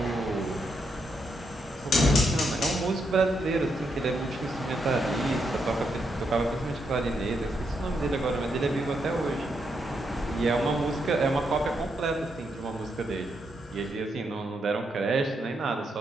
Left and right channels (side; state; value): both; normal; correlation 0.80